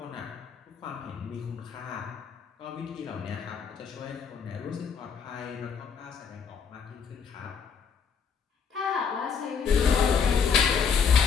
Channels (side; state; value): right; quieter; 6.5 dB